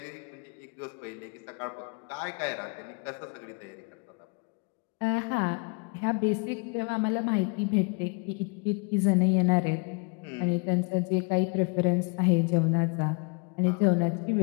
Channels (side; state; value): right; quieter; 32.6 dB